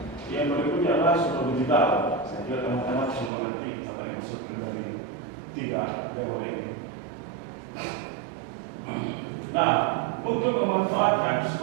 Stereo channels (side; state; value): left; drops out; at 3.3 s